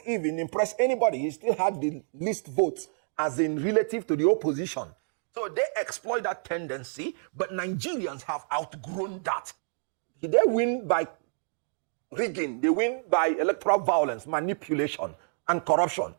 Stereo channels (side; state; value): left; silent; digital silence